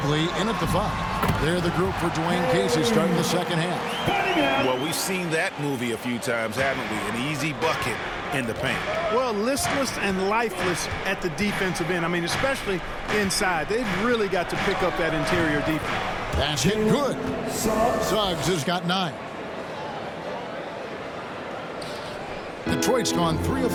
in at the 5. They're the group for Dwayne Casey starting the second half. Well, we've seen that movie a few times, haven't we? An easy bucket in the paint. Well, listless and lifeless at the defensive end. I mean, especially inside. They've really got to pick up that interior defense. That's hit good. Suggs has got 9. Detroit's gone 3 of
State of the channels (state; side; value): identical; both; correlation 1.00